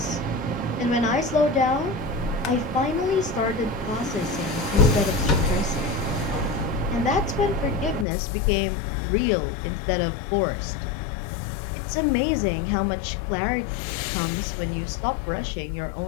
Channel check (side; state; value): right; drops out; at 8.1 s